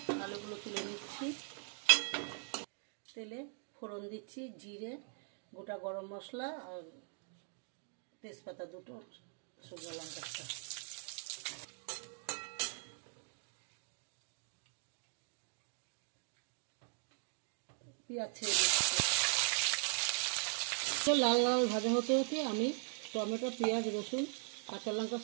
আলুগুলো তুলে নিচ্ছি। তেলে ফোড়ন দিচ্ছি, জিরে, গোটা গরম মশলা আর তেজপাতা দুটো, শুকনো লঙ্কা একটা। পেঁয়াজ ছেড়ে দিচ্ছি। লাল লাল ভাজা হতে হতে আমি টমেটো, পেঁয়াজ, রসুন, কাঁচা লঙ্কা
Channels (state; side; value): silent; left; 51 dB below the other